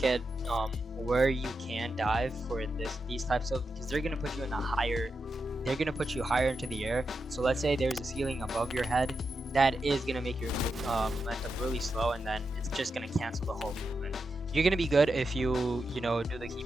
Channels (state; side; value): normal; both; correlation 0.87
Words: at where you can dive for these types of, because they're gonna put you in a higher they're gonna put you higher into the air. So let's say there's a ceiling above your head, that is gonna make your momentum really slow, and then it's just gonna cancel the whole movement. You're gonna be good if you do the